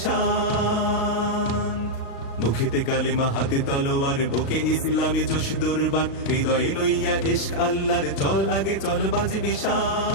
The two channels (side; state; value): right; late; 36 ms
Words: মুখেতে কালেমা হাতে তলোয়ার, বুকে ইসলামী জোশ দুর্বার, হৃদয়ে লইয়া ইশক আল্লাহর চল আগে চল বাজে